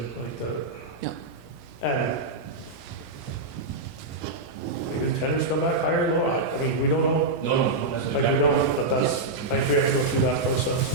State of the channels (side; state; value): left; quieter; 3.1 dB